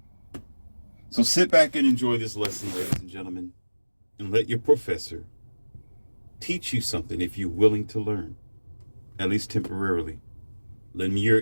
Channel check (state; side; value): inverted; both; correlation -1.00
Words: So sit back and enjoy this lesson, ladies and gentlemen, and let your professor teach you something if you're willing to learn, at least temporarily. Lend me